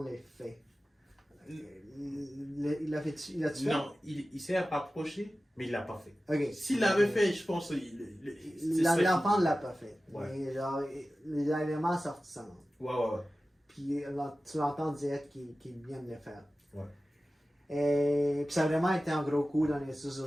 fait. Il a fait, il a tué? Non, il s'est rapproché, mais il l'a pas fait. Ok. S'il l'avait fait, je pense L'enfant ne l'a pas fait. Ouais. Mais genre, le Dalai Lama a sorti sa langue. Ouais. Puis là, tu l'entends dire qu'il vient de le faire. Ouais. Et puis ça a vraiment été un gros coup dans les réseaux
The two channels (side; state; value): both; normal; correlation 0.95